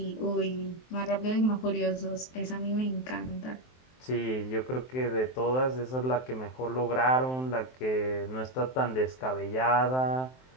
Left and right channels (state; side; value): late; right; 23 ms